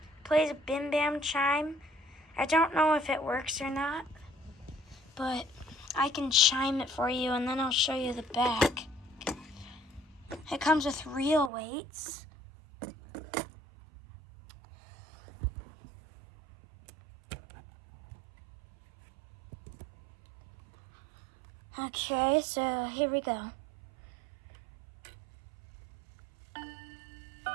It plays a bim bam chime. I don't know if it works or not, but I can chime it for you, and then I'll show you the back. It comes with real weights. Okay, so here we go. I'm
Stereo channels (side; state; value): left; drops out; at 11.5 s